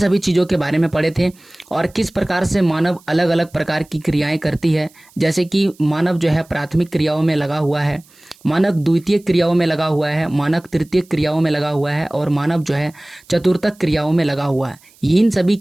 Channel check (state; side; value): noise; right; hiss, 28 dB below the sound